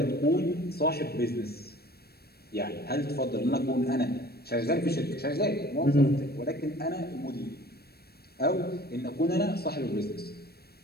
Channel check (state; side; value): late; right; 0.46 ms